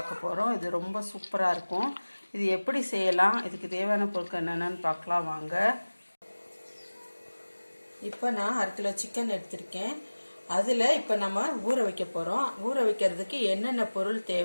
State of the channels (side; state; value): both; inverted; correlation -1.00